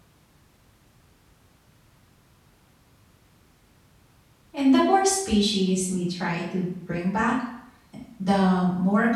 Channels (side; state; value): both; identical; correlation 1.00